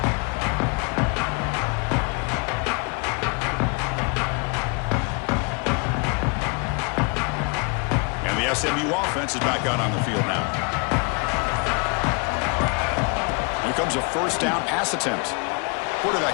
And the SMU offense is back out on the field now. Here comes a first down pass attempt.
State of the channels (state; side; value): quieter; right; 33.3 dB